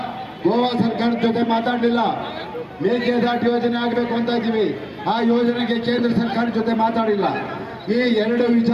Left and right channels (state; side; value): identical; both; correlation 1.00